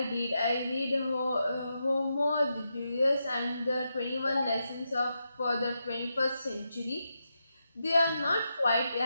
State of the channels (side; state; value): both; inverted; correlation -0.85